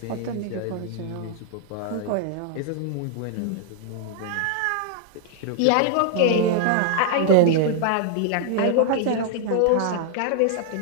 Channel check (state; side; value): different; both; correlation 0.00